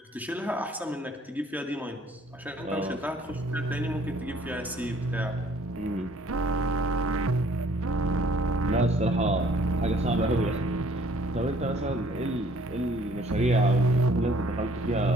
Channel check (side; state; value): both; normal; correlation 0.59